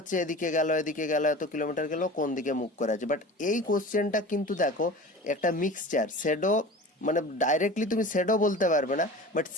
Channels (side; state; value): both; normal; correlation 0.37